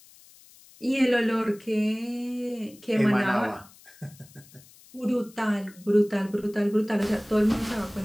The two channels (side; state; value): left; noise; hiss, 24 dB below the sound